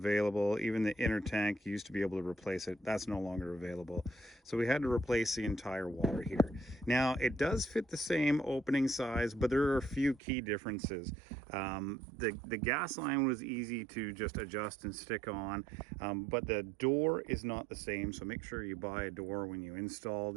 Even the inner tank used to be able to replace it. That's no longer available. So we had to replace the entire water heater. Now it does fit the same opening size, but there are a few key differences. The gas line was easy to just adjust and stick on, but the door is not the same. So make sure you buy a door when you install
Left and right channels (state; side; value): drops out; left; at 10.2 s